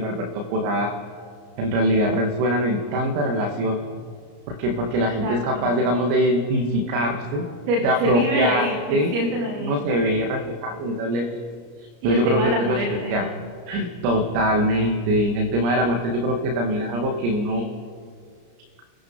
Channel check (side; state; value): left; late; 34 ms